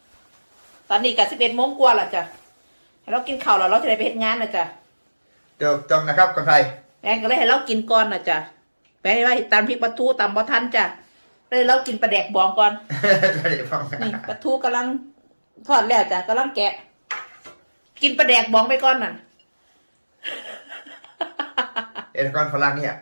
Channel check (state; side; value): inverted; both; correlation -1.00